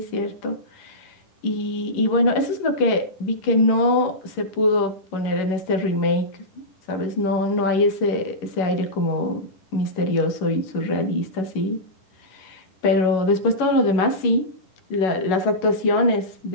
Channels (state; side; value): late; right; 11 ms